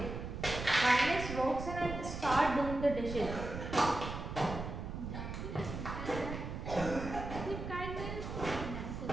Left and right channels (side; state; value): right; noise; rumble, 6 dB below the sound